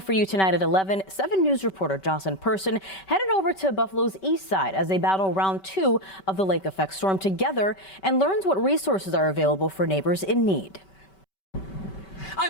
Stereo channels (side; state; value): right; late; 5.2 ms